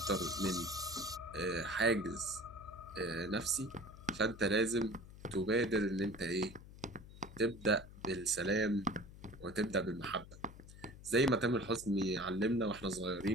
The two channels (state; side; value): noise; left; hum, 17 dB below the sound